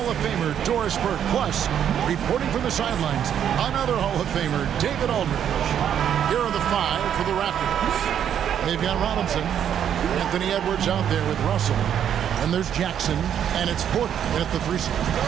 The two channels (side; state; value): left; quieter; 9.3 dB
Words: of Famer Doris Burke. Plus, reporting from the sidelines, another Hall of Famer, David Aldridge. Here are the five for the Raptors. They've got Robinson, Anthony Edwards out there with Russell. And there's Jackson, and it's Porter at the 3 spot.